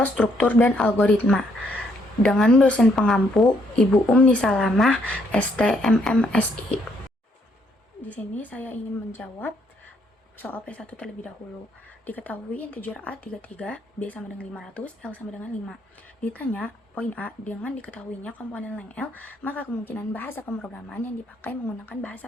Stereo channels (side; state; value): both; normal; correlation 0.71